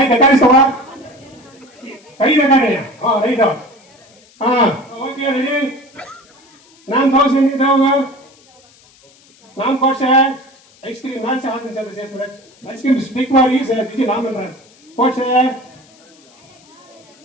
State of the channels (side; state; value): left; noise; hiss, 29 dB below the sound